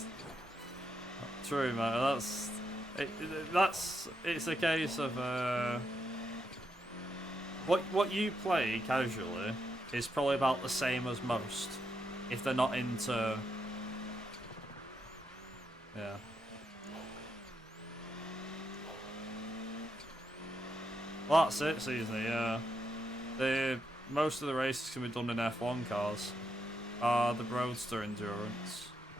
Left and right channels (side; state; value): both; normal; correlation 0.81